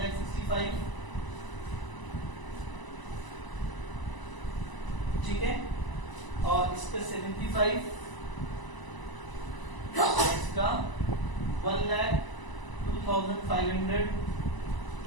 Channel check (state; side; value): late; right; 1.0 ms